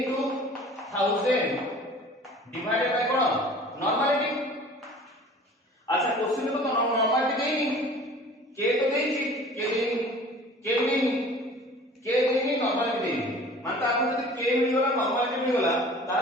1000 ডিভাইডেড বাই কোন নরমালিটি আচ্ছা কোশ্চেন তো নরমালিটি দেইনি k তো দেইছি k দেইনি নরমালিটি দেইনি মানে আপনি যদি k মিল গলা নরমালিটি মিল গলা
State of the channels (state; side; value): normal; both; correlation 0.46